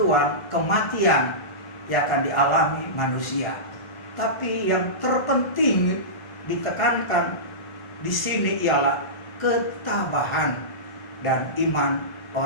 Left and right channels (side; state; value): right; late; 1.4 ms